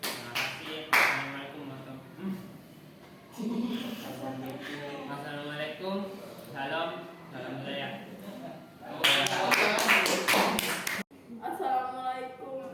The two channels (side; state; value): both; identical; correlation 1.00